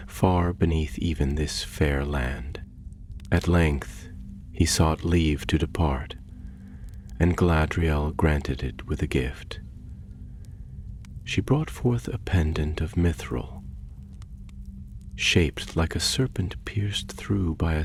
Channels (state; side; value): identical; both; correlation 1.00